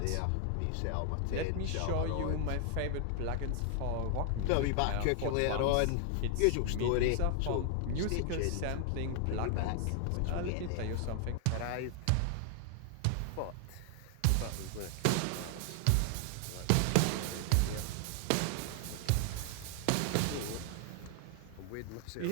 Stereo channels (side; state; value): both; different; correlation 0.00